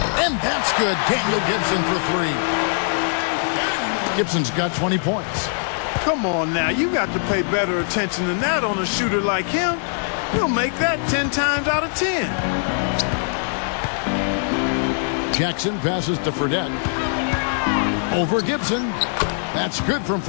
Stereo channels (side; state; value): right; silent; 64 dB below the other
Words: And that's good. Daniel Gibson for 3. Gibson's got 20 points. Come on now, you got to pay better attention than that on a shooter like him. He'll make that 10 times out of 10. Jackson passes to Fredette. Over Gibson. That's good from